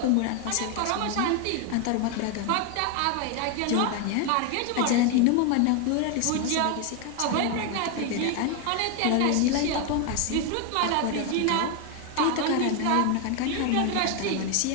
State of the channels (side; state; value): both; different; correlation 0.01